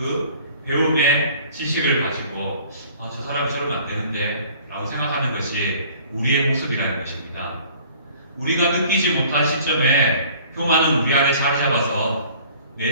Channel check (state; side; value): inverted; both; correlation -0.51